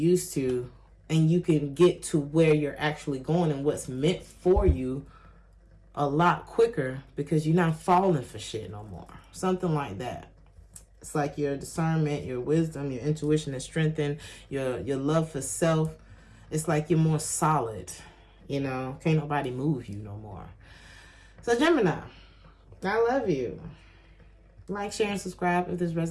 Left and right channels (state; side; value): identical; both; correlation 1.00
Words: to. And you can get to where you're actually going and what's meant for you a lot quicker because you're not falling for shit no more. Something like that. It's like your discernment, your wisdom, your intuition is strengthened, your love for self. It's like you're more solid. You know, can't nobody move you no more. So Gemini, I love you. Like, share, and subscribe if this